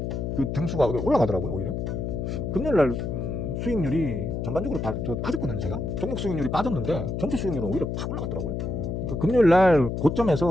그 등수가 올라가더라고요. 오히려 금요일날 수익률이 전반적으로 빠졌거든요. 제가 종목 수익률이 빠졌는데 전체 수익률은 오히려 팍 올라갔더라고요. 그러니까 금요일날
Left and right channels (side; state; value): left; noise; hum, 3 dB below the sound